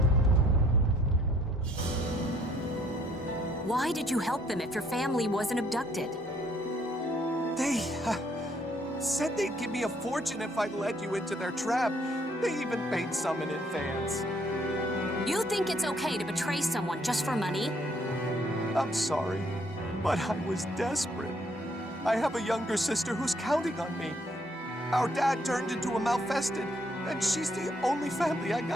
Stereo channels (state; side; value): normal; both; correlation 0.66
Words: Why did you help them if your family wasn't abducted? They said they'd give me a fortune if I led you into their trap. They even paid some in advance. You think it's okay to betray someone just for money? I'm sorry, but I was desperate. I have a younger sister who's counting on me. Our dad turned into a malfested, and she's the only family I